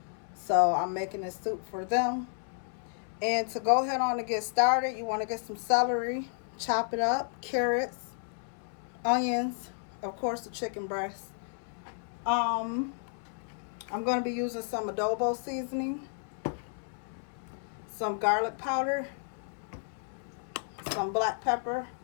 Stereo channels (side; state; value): right; silent; 56 dB below the other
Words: so I'm making this soup for them. And to go ahead on and get started, you want to get some celery, chop it up, carrots, onions, of course the chicken breast. I'm going to be using some adobo seasoning, some garlic powder, some black pepper,